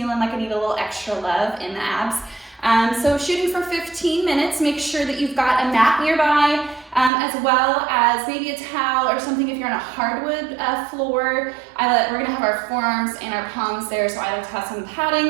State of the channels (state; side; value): drops out; left; at 7.1 s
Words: like I need a little extra love in the abs. So shooting for 15 minutes, make sure that you've got a mat nearby, as well as maybe a towel or something if you're on a hardwood floor. We're gonna have our forearms and our palms there, so I like to have some